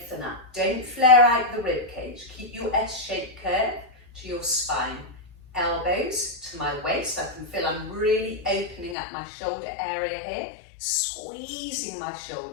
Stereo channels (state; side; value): drops out; right; at 9.0 s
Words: up, don't flare out the rib cage. Keep your S-shaped curve to your spine. Elbows to my waist. I can feel I'm really opening up my shoulder area here, squeezing my